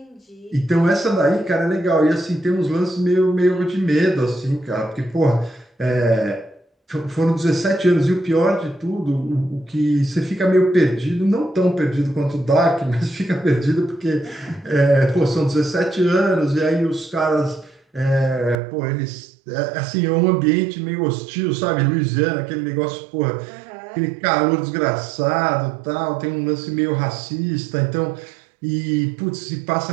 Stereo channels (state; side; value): drops out; left; at 18.6 s